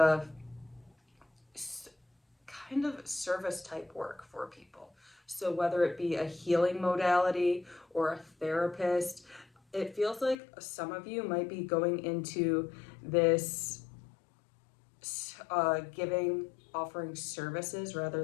kind of service type work for people. So whether it be a healing modality or a therapist, it feels like some of you might be going into this offering services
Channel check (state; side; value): drops out; right; at 10.4 s